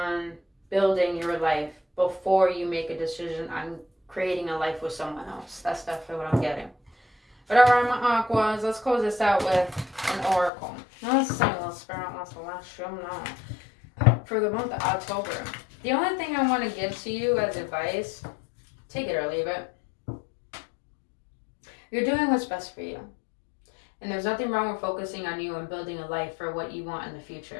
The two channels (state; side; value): drops out; right; at 10.5 s